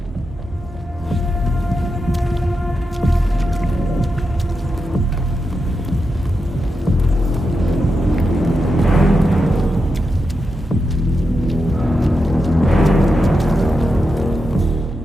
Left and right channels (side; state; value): both; normal; correlation 0.88